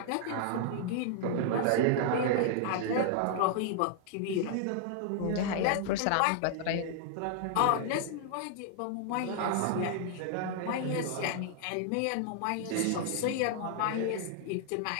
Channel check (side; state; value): both; different; correlation -0.01